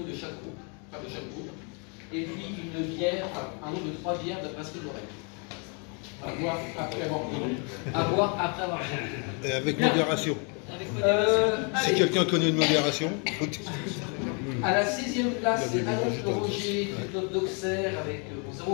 de chaque groupe, et puis une bière, un nombre de 3 bières de brasserie de l'oreille. À boire après avoir bu. À boire après avoir bu. Et avec modération. Si quelqu'un connaît une modération. À la 6e place, c'est Annonce Roger du club d'Auxerre avec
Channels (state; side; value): quieter; right; 36.5 dB